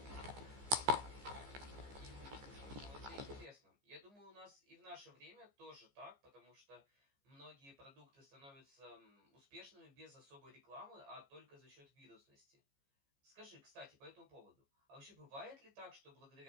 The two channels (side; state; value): left; late; 15 ms